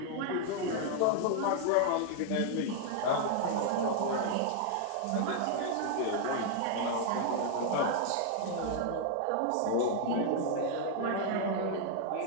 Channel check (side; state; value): both; different; correlation 0.00